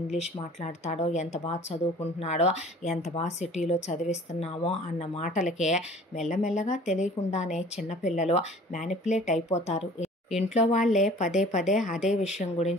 ఇంగ్లీష్ మాట్లాడతాడో, ఎంత బాగా చదువుకుంటున్నాడో, ఎంత బాగా సిటీలో చదివిస్తున్నామో అన్న మాటలకే మెల్లమెల్లగా తెలియకుండానే చిన్నపిల్లలు మ్యానిపులేట్ అయిపోతారు. ఇంట్లో వాళ్ళే పదే అదే విషయం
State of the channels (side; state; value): both; normal; correlation 0.48